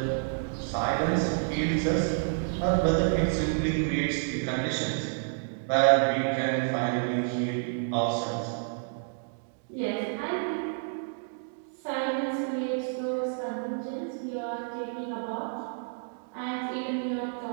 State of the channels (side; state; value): left; silent; digital silence